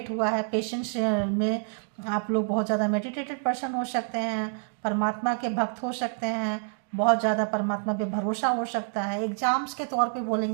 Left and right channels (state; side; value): silent; left; 60 dB below the other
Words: हुआ है पेशेंस में। आप लोग बहुत ज़्यादा मेडिटेटेड पर्सन हो सकते हैं, परमात्मा के भक्त हो सकते हैं, बहुत ज़्यादा परमात्मा पे भरोसा हो सकता है। एग्जाम्स के तौर पे